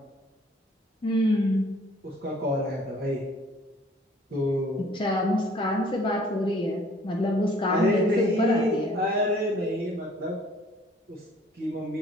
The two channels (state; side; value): normal; both; correlation 0.56